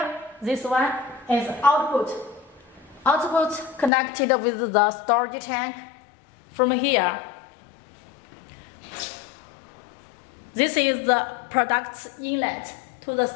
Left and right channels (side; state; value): right; drops out; at 3.9 s